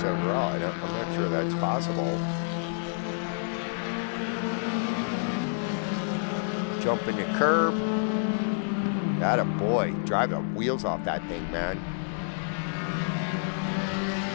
I'm not sure that's possible. Jumping the curb. Atta boy. Drive the wheels off that thing, man.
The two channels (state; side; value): silent; right; digital silence